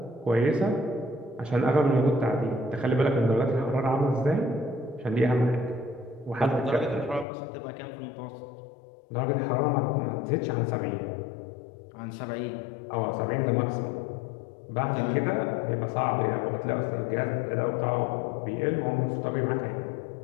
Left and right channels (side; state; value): right; drops out; at 7.2 s